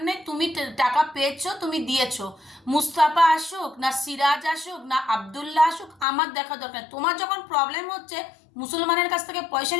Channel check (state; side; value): drops out; right; at 6.1 s